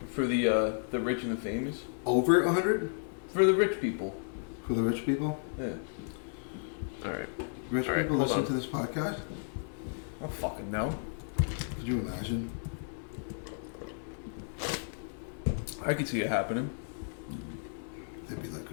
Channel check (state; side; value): silent; right; 56 dB below the other